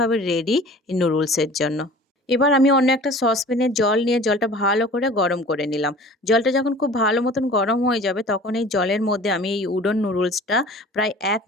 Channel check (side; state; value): both; normal; correlation 0.44